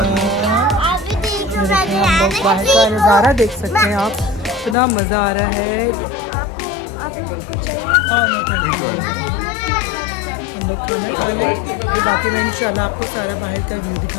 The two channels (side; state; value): right; drops out; at 4.8 s